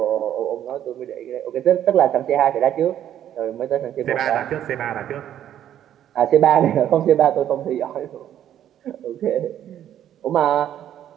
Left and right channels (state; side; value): quieter; left; 10.9 dB